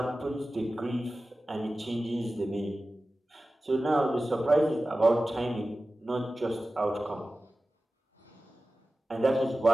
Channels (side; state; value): both; normal; correlation 0.95